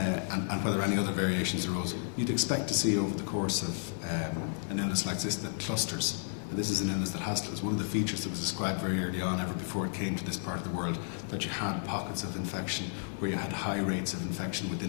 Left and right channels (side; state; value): right; silent; 56 dB below the other